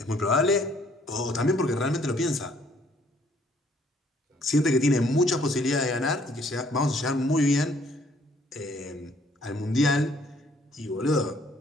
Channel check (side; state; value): both; normal; correlation 0.63